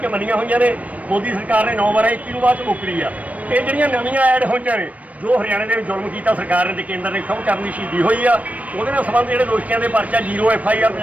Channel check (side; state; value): left; late; 0.069 ms